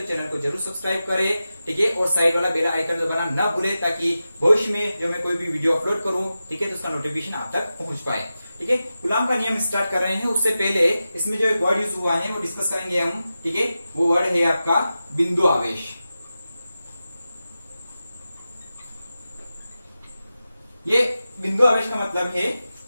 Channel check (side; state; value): both; inverted; correlation -0.93